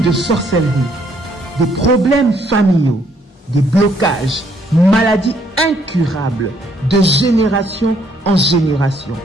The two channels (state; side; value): normal; both; correlation 0.68